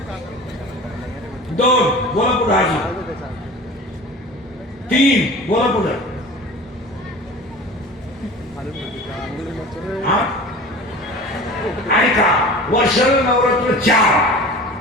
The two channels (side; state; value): both; normal; correlation 0.38